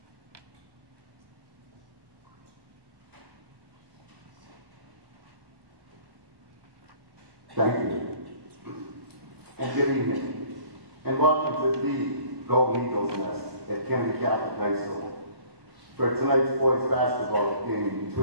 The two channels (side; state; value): left; late; 1.1 ms